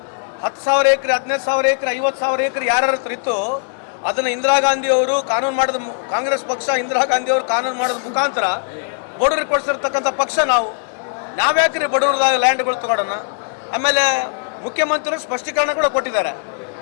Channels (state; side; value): silent; right; 60 dB below the other